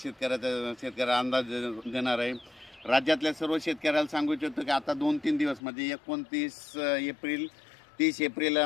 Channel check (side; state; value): right; drops out; at 5.6 s